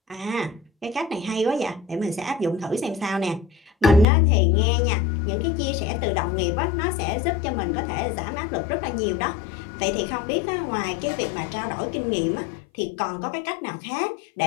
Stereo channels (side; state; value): right; drops out; at 4.0 s